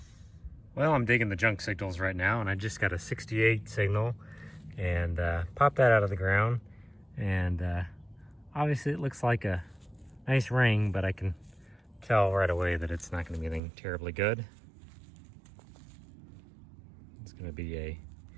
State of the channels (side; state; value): left; drops out; at 13.6 s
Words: Well, I'm digging the junk signals right now, and I just got a 68 signal and popped that out of the ground. And obviously it looks like a nice ring, but I can tell right away that it's not going to be anything terribly good. It's going to be a